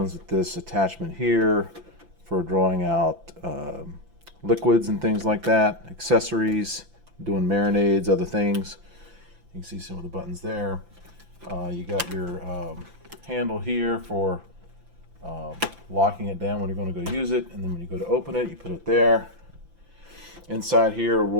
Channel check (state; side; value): late; left; 5.9 ms